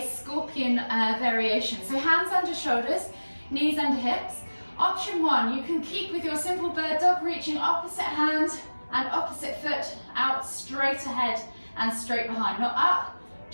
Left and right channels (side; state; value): both; inverted; correlation -1.00